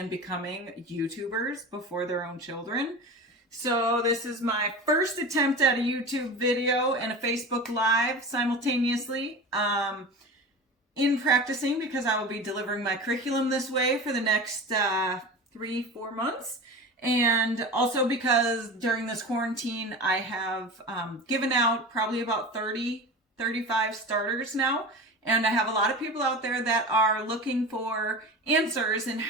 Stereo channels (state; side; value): normal; both; correlation 0.31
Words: becoming YouTubers before their own children. So this is my first attempt at a YouTube video and a Facebook Live simultaneously. In practicing, because I will be delivering my curriculum this way for the next 3-4 months. And also because during this quarantine, I have given out probably about 35 starters now. And I have a lot of people out there that are looking for answers in